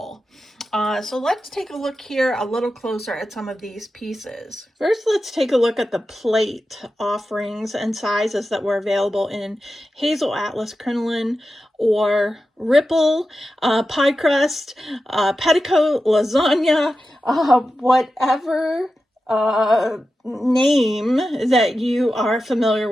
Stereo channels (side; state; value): both; normal; correlation 0.92